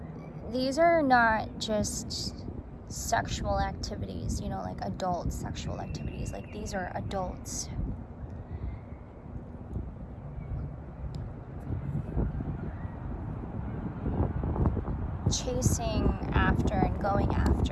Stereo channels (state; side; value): identical; both; correlation 1.00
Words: these are not just sexual activities, you know, like adult sexual activities. Like, these are adults chasing after and going